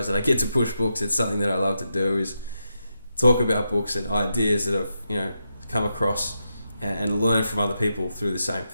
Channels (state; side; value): inverted; both; correlation -0.85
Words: that I get to push books. It's something that I love to do, is talk about books and ideas that I've come across, and learn from other people through the same